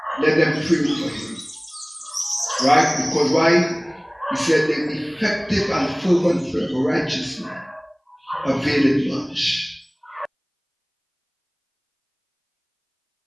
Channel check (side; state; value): both; identical; correlation 1.00